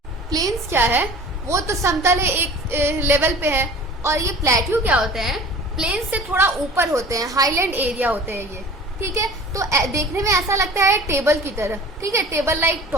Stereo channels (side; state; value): both; normal; correlation 0.42